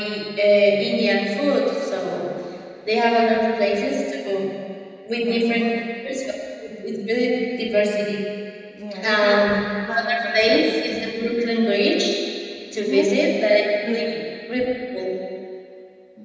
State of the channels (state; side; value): identical; both; correlation 1.00